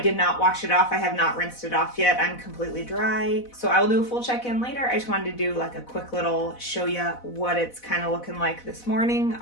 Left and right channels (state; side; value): late; right; 4.1 ms